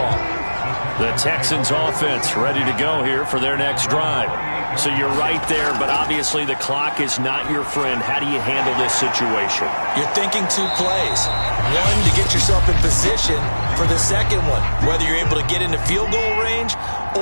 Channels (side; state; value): both; inverted; correlation -1.00